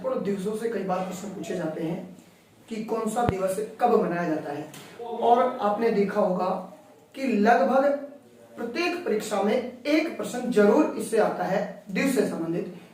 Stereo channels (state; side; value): identical; both; correlation 1.00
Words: दिवसों से कई बार प्रश्न पूछे जाते हैं कि कौन सा दिवस कब मनाया जाता है। और आपने देखा होगा कि लगभग प्रत्येक परीक्षा में एक प्रश्न जरूर इससे आता है दिवस से संबंधित